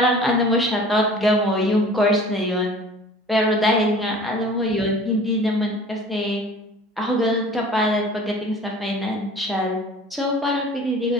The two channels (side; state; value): both; normal; correlation 0.45